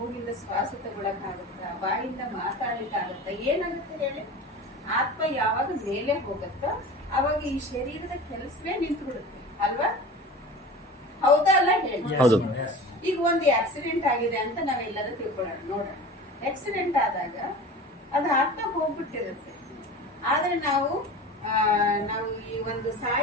ಶ್ವಾಸ ತಗೊಳಕ್ಕಾಗತ್ತಾ? ಬಾಯಿಂದ ಮಾತಾಡ್ಲಿಕ್ಕಾಗತ್ತಾ? ಏನಾಗುತ್ತೆ ಹೇಳಿ? ಆತ್ಮ ಯಾವಾಗ ಮೇಲೆ ಹೋಗುತ್ತೋ ಅವಾಗ ಈ ಶರೀರದ ಕೆಲಸವೇ ನಿಂತು ಬಿಡುತ್ತೆ ಅಲ್ವಾ? ಹೌದಾ ಅಲ್ಲ ಹೇಳಿ? ಹೌದು. ಈಗ ಒಂದು ಆಕ್ಸಿಡೆಂಟ್ ಆಗಿದೆ ಅಂತ ನಾವೆಲ್ಲರೂ ತಿಳ್ಕೊಳ್ಳೋಣ. ನೋಡೋಣ, ಆಕ್ಸಿಡೆಂಟ್ ಆದಾಗ ಅದು ಆತ್ಮ ಹೋಗ್ಬಿಟ್ಟಿರುತ್ತೆ. ಆದ್ರೆ ನಾವು ಈ ಒಂದು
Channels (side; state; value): both; normal; correlation 0.35